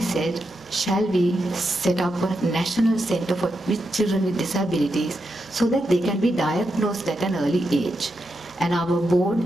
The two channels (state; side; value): normal; both; correlation 0.85